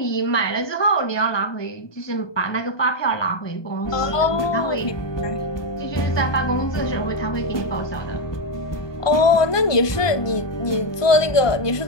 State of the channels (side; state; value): right; late; 1.2 ms